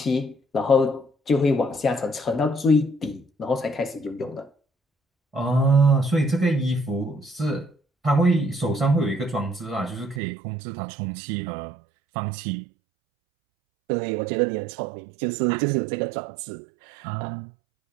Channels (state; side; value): drops out; left; at 10.2 s